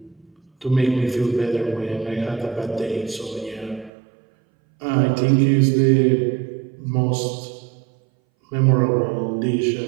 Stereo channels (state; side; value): drops out; left; at 3.9 s